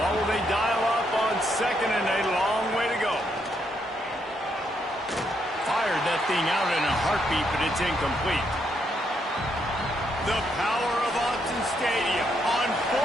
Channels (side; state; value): both; normal; correlation 0.76